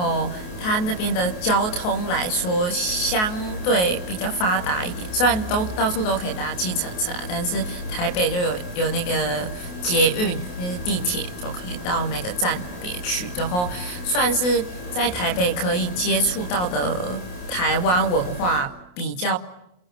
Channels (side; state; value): right; late; 28 ms